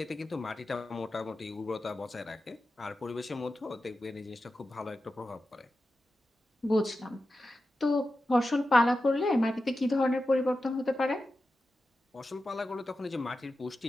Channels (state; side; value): normal; both; correlation 0.92